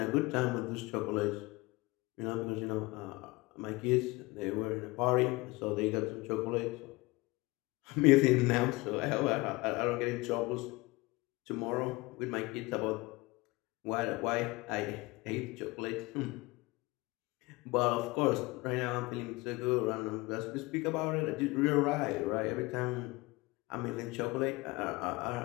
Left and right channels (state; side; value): quieter; right; 22.9 dB